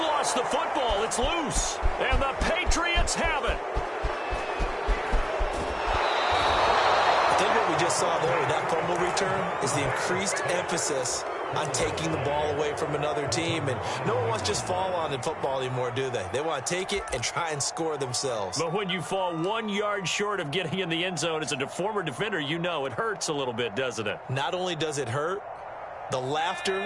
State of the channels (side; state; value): both; identical; correlation 1.00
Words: the football. It's loose. And the Patriots have it. I think what we just saw there with that fumble return is the increased emphasis on taking the ball away from another team. And no one wants to just fall on in football anymore, do they? They want to take it and try and score themselves. But when you fall 1 yard short of getting in the end zone as a former defender, you know it hurts a little bit, doesn't it? Not only does it hurt, the